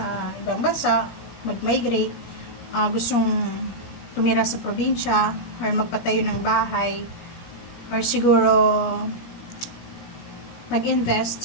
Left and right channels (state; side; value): late; right; 17 ms